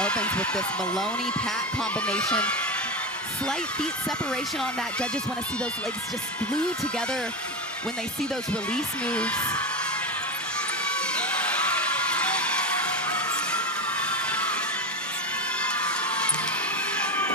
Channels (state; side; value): normal; both; correlation 0.18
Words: with this Maloney-Pat combination. Slight feet separation on that. Judges want to see those legs just glued together when they see those release moves.